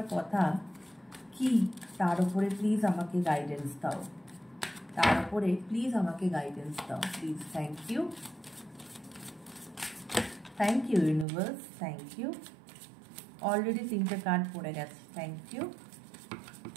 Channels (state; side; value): drops out; left; at 11.2 s